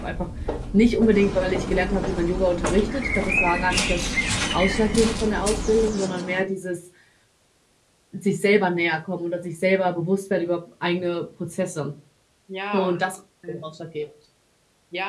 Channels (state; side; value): identical; both; correlation 1.00